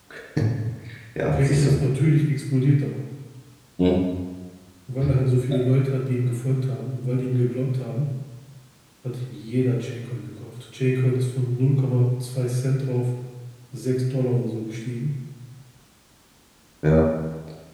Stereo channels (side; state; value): both; identical; correlation 1.00